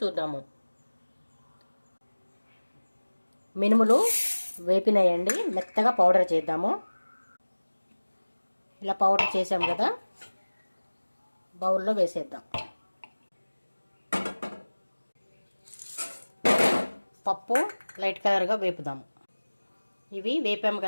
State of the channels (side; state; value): both; inverted; correlation -1.00